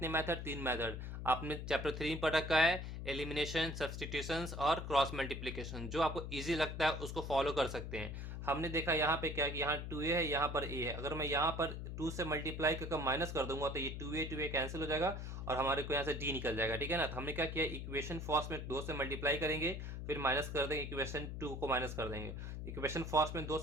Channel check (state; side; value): noise; left; hum, 6 dB below the sound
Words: मेथड, 3 मेथड। आपने चैप्टर 3 में पढ़ रखा है, एलिमिनेशन, सब्सटीट्यूशंस और क्रॉस मल्टीप्लिकेशन। जो आपको इजी लगता है उसको फॉलो कर सकते हैं। हमने देखा यहाँ पे क्या कि यहाँ 2a है, यहाँ पर a है। अगर मैं यहाँ पर 2 से मल्टीप्लाई करके माइनस कर दूंगा तो ये 2a कैंसिल हो जाएगा और हमारे को यहाँ से d निकल जाएगा। ठीक है ना, तो हमने क्या किया, इक्वेशन फर्स्ट में 2 से मल्टीप्लाई करेंगे, फिर माइनस कर देंगे, इक्वेशन 2 को माइनस कर देंगे। इक्वेशन फर्स्ट में 2